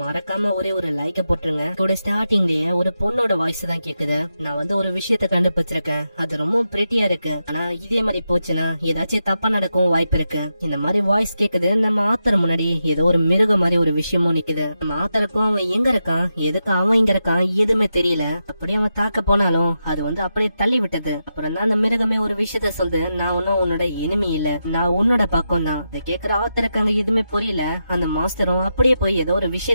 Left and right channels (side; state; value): both; inverted; correlation -0.87